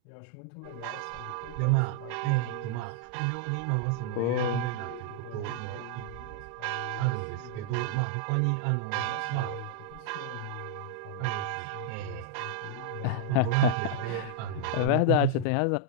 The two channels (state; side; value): different; both; correlation -0.01